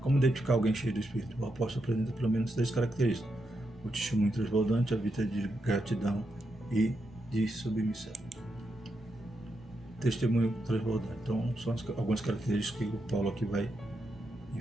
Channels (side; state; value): both; normal; correlation 0.84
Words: Como identificar alguém cheio do Espírito? O apóstolo apresenta pelo menos 3 características: o testemunho transbordante, a vida de gratidão e de submissão. Testemunho transbordante. Então, são algumas características que o Paulo aqui vai